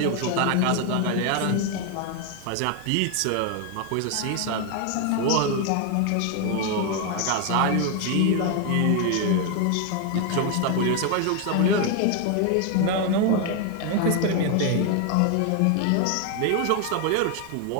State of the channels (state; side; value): different; both; correlation 0.01